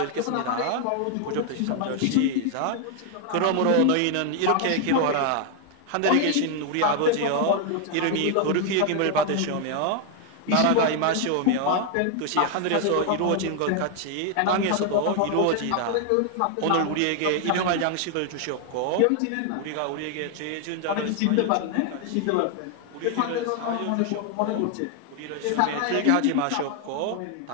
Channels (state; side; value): different; both; correlation 0.00